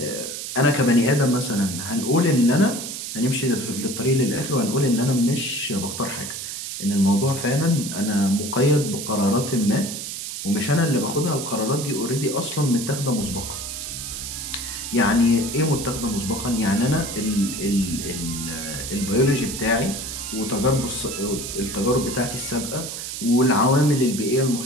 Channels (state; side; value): noise; right; hiss, 7 dB below the sound